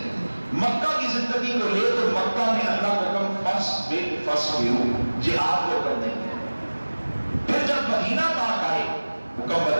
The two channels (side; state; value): both; inverted; correlation -1.00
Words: مکہ کی زندگی کو لے تو مکہ میں اللہ کا حکم فصبروا، جہاد کو کرنے کے۔ پھر جب مدینہ پاک آئے حکم